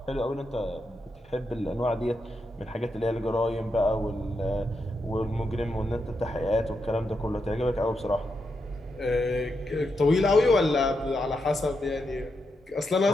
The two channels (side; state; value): both; normal; correlation 0.84